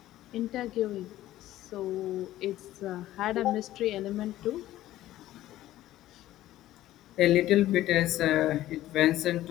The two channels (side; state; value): right; quieter; 14.5 dB